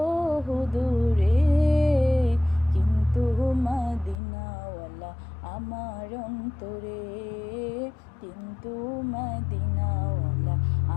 দূরে, কিন্তু মদিনাওয়ালা আমার অন্তরে, কিন্তু মদিনাওয়ালা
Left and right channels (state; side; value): drops out; right; at 4.2 s